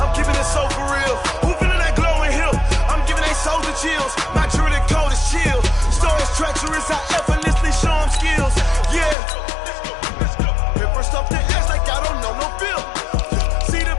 keeping it so for real. Who feeling that glowing hill? I'm giving they soldier chills. My jewelry code is chill. Stories treacherous, I effortlessly show them skills. Yeah. Paper stuff the edge like I don't know no feel. See the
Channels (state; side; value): drops out; right; at 9.2 s